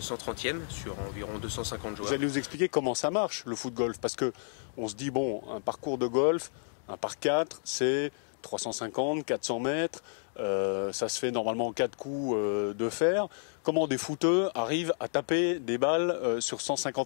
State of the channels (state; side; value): silent; right; digital silence